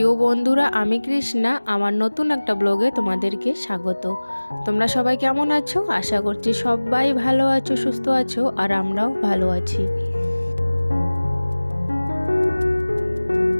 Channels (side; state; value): both; inverted; correlation -1.00